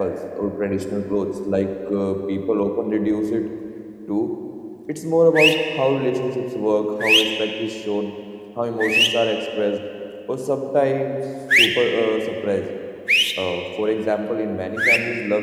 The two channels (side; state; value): both; identical; correlation 1.00